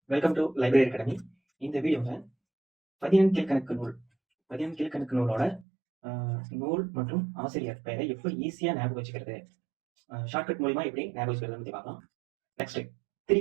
welcome to library academy. இந்த வீடியோவில் பதினெண் கீழ்கணக்கு நூல் கீழ்கணக்கு நூலோட நூல் மற்றும் ஆசிரியர் பெயரை எப்படி ஈஸியாக ஞாபகம் வச்சுக்கிறது, ஷார்ட்கட் மூலிமா எப்படி ஞாபகம் வச்சுக்கிறது பற்றி பார்க்கலாம். நெக்ஸ்ட்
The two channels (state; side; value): drops out; left; at 5.7 s